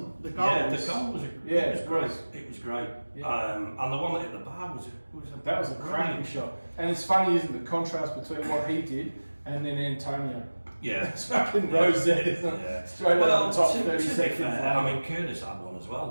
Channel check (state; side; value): inverted; both; correlation -1.00